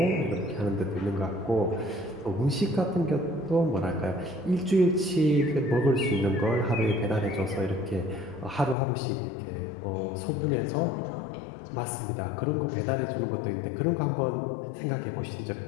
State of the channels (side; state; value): right; drops out; at 8.8 s